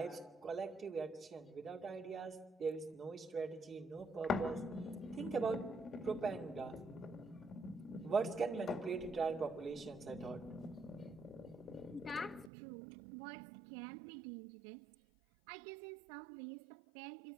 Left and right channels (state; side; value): drops out; left; at 12.5 s